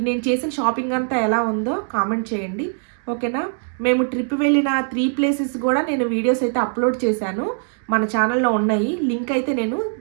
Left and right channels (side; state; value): left; silent; 62 dB below the other